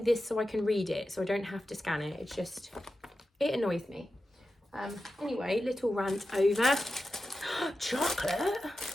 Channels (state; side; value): normal; both; correlation 0.92